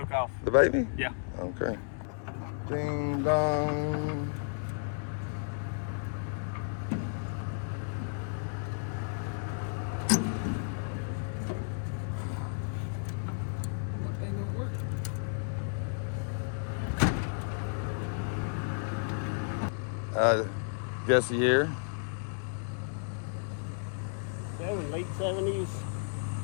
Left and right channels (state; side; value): silent; right; digital silence